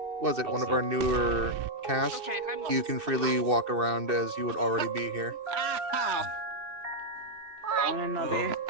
one of our newer cast, you can freely walk around as you would already be here.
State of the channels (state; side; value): late; left; 2.6 ms